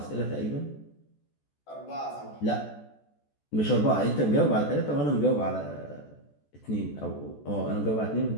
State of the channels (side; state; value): right; late; 14 ms